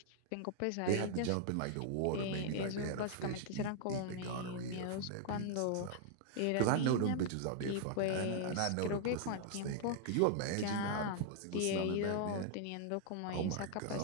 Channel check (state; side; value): different; both; correlation 0.00